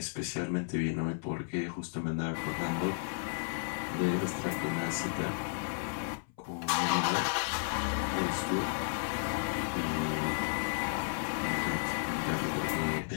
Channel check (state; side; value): silent; right; 56 dB below the other